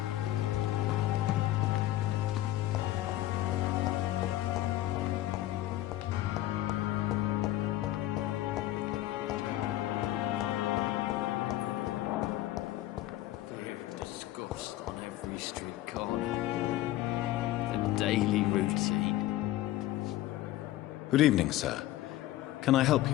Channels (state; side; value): quieter; right; 15.0 dB